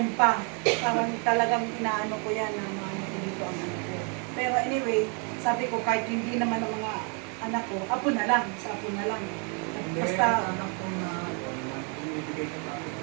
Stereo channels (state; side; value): quieter; left; 37.2 dB